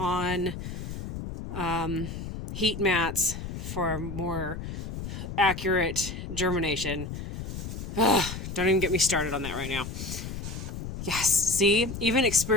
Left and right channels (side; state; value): left; noise; rumble, 7 dB below the sound